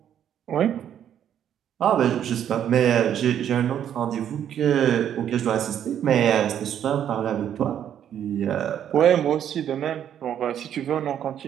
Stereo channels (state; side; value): quieter; left; 9.8 dB